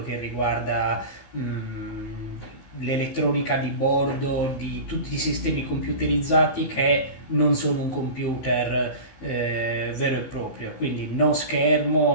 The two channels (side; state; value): right; late; 15 ms